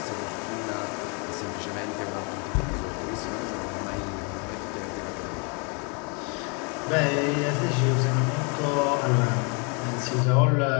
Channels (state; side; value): quieter; right; 34.4 dB